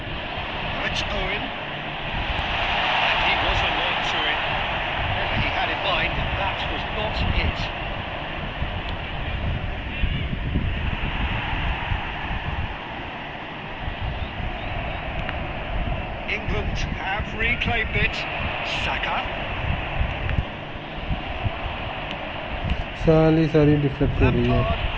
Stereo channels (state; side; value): identical; both; correlation 1.00